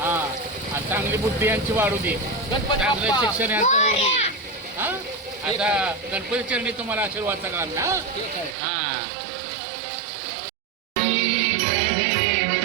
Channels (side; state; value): left; drops out; at 8.6 s